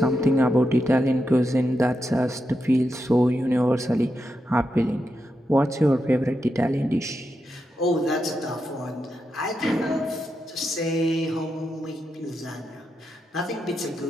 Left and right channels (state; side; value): normal; both; correlation 0.86